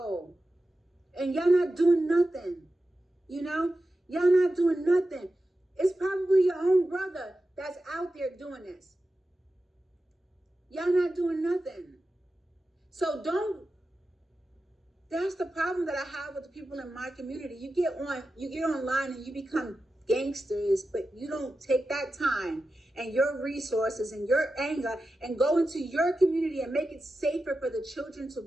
And y'all not doing nothing, you know? Y'all not doing nothing. It's probably your own brother that's out there doing this. Y'all not doing nothing. So that's the problem that I have with the people in my community. You get online and you become gangsters, but you don't take that time and your resources and your anger and go into your community and make it safer for the children to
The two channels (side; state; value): both; normal; correlation 0.92